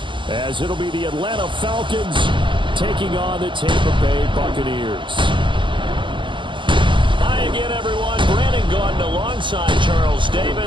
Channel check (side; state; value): left; late; 0.24 ms